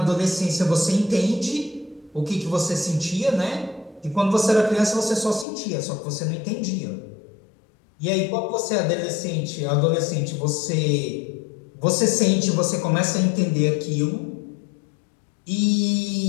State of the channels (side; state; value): right; drops out; at 5.5 s